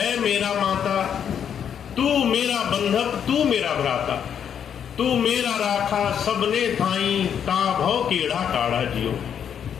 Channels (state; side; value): quieter; right; 8.4 dB